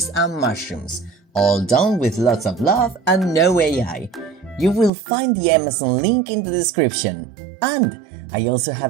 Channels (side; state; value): left; drops out; at 4.9 s